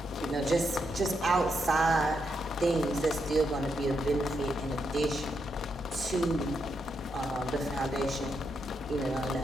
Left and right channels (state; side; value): normal; both; correlation 0.81